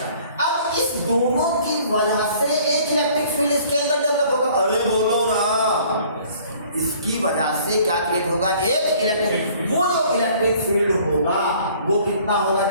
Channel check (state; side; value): inverted; both; correlation -0.55